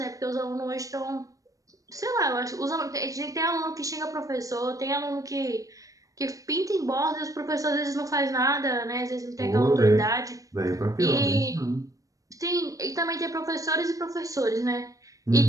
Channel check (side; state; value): left; late; 0.16 ms